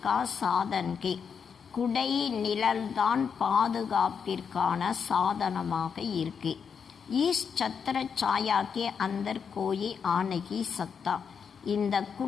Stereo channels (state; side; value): quieter; right; 6.6 dB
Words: का साधन के, குடை நிழல்தான் பாதுகாப்பிற்கான சாதனமாக இருக்கு. इस छत्र छाया के अंदर कोई आ नहीं सकता. இந்த